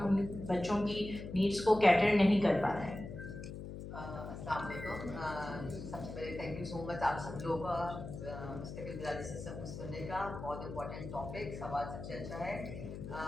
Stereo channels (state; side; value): noise; left; hum, 9 dB below the sound